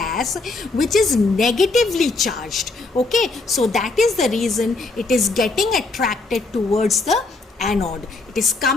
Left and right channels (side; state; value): right; quieter; 3.5 dB